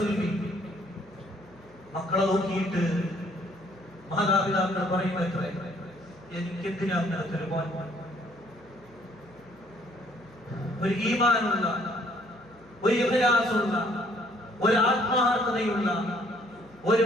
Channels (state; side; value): noise; left; hum, 29 dB below the sound